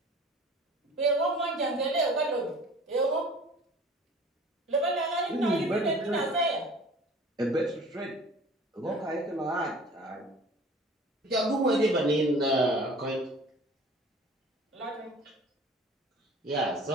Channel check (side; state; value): both; normal; correlation 0.46